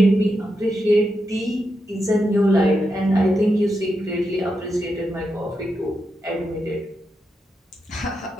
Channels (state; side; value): normal; both; correlation 0.86